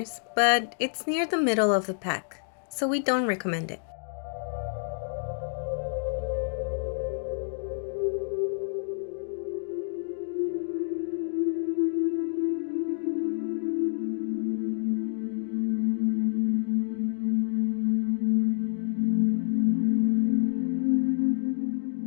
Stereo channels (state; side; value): silent; right; digital silence